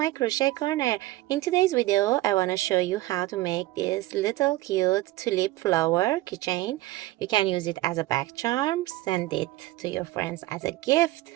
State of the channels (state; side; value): quieter; left; 17.5 dB